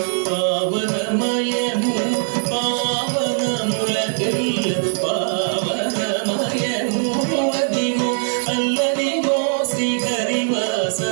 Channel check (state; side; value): silent; left; 60 dB below the other